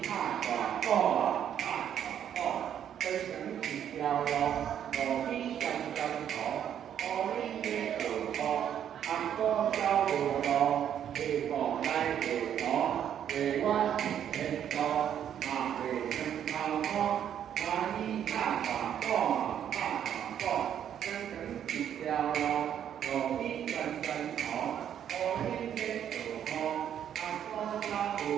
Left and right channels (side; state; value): left; quieter; 9.6 dB